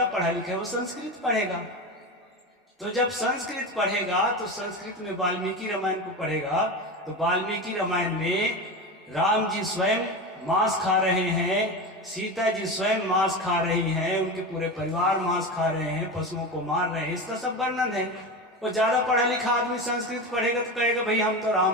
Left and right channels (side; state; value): both; normal; correlation 0.23